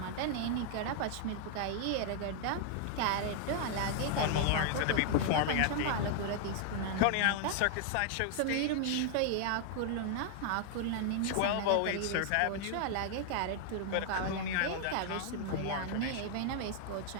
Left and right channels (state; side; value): different; both; correlation 0.00